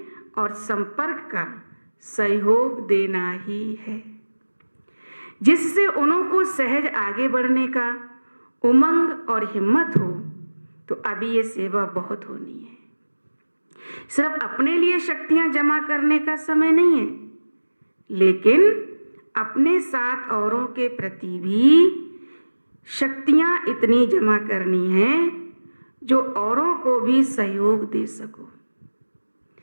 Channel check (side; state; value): both; inverted; correlation -1.00